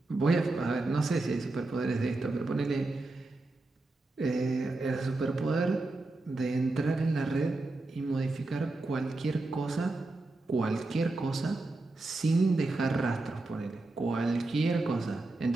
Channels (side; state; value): left; quieter; 3.0 dB